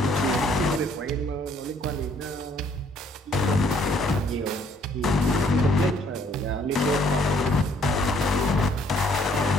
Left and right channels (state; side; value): normal; both; correlation 0.64